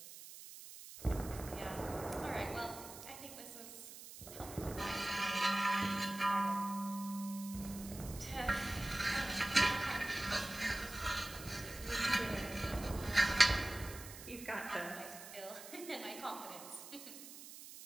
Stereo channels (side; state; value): right; noise; hiss, 13 dB below the sound